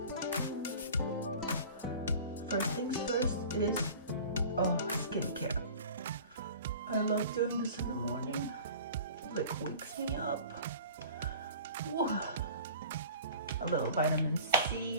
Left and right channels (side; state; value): both; inverted; correlation -0.42